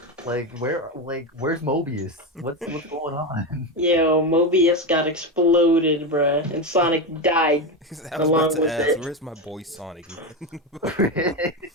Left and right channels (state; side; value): normal; both; correlation 0.15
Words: Where's Mobius? What's going on? Yo, Mobius got exploded, bruh, and Sonic died. I was Along about to with ask, it. where's my boy Sonic, man?